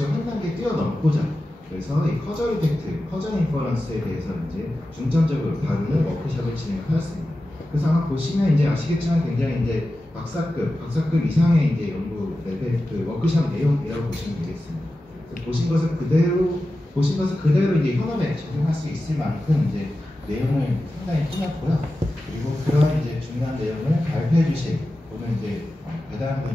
한 단계 뛰어넘고자 그래서 이 커저 이펙트, 커저 인퍼런스에 대해서 이제 중점적으로 다루는 워크숍을 진행하였습니다. 그래서 아마 보시면 이제 아시겠지만 굉장히 이제 박사급 이상의 이제 연구 레벨 그 워크숍 내용이라고 보시면 되겠습니다. 보신 것을 그대로 이제 현업에 적용할 수 있을 만큼 이제 내용을 상당히 꾸몄고요. 그리고 그런 이제 중요한 내용을 발표해 주실 오늘 이제 대단한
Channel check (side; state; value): both; normal; correlation 0.93